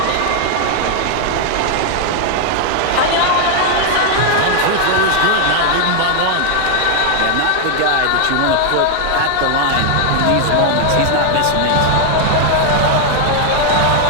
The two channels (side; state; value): both; different; correlation 0.00